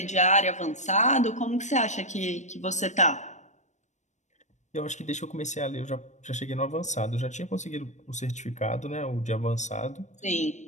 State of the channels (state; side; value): late; right; 0.34 ms